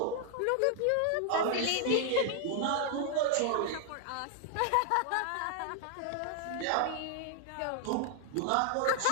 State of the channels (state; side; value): different; both; correlation 0.00